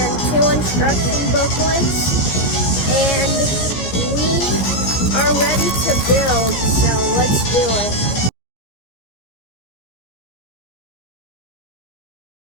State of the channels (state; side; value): late; right; 15 ms